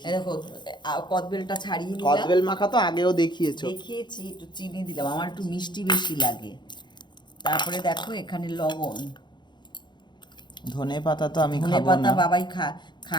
এই দেখো, কদবেলটা ছাড়িয়ে নিলাম, কদবেল মাখা তো আগেও দেখিয়েছো। দেখিয়েছি, একটু চিনি দিলাম, আমার একটু মিষ্টি বেশি লাগে। তারপরে দেখো এখানে লবণ, ধনে পাতা তো আমি ধনে খাবো পাতা না। বাবাই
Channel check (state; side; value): late; right; 0.22 ms